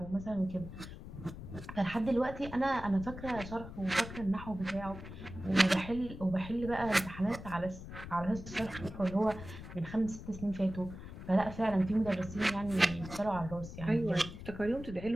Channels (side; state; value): left; noise; rumble, 12 dB below the sound